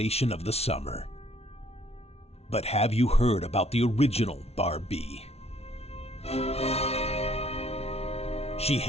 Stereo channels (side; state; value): right; late; 0.30 ms